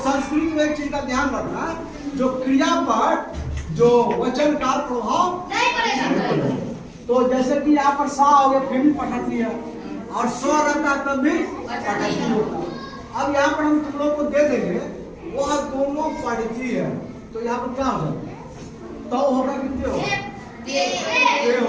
में एक चीज का ध्यान रखना, जो क्रिया पर जो वचन का प्रभाव नहीं पड़ेगा। तो जैसे कि यहाँ पर सा हो गया, फिर भी पठती है, और स्व रहता तब भी पठती होता है। अब यहाँ पर हम तुम लोग को दे देंगे, वह दोनों पढ़ती है, तो यहाँ पर क्या हो जाएगा? तो होगा कितने होगा?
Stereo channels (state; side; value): identical; both; correlation 1.00